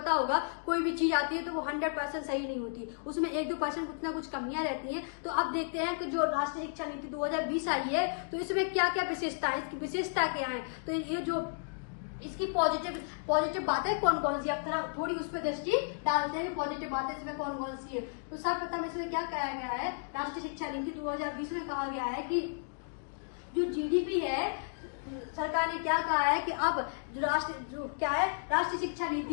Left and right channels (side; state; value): right; silent; digital silence